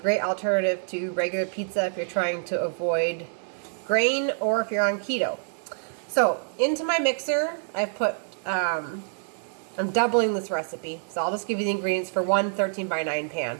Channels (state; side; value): silent; left; digital silence